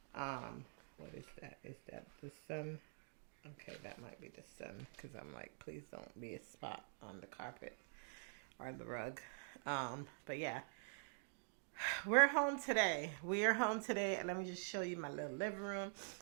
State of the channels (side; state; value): left; silent; digital silence